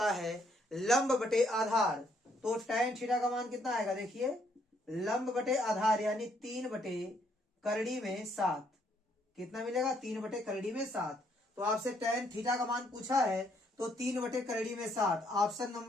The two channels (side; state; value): both; normal; correlation 0.70